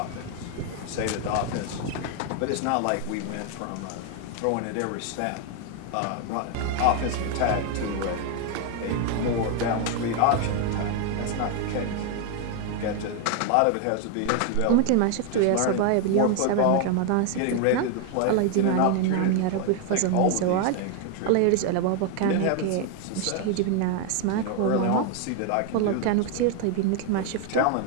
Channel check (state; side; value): different; both; correlation 0.01